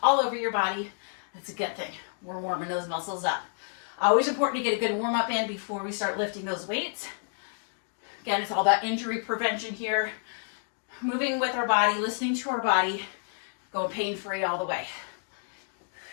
all over your body, that's a good thing. We're warming those muscles up. Always important to get a good warm up in before we start lifting those weights. Again, it's all about injury prevention here. Moving with our body, listening to our body, going pain-free all the way.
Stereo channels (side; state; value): right; silent; digital silence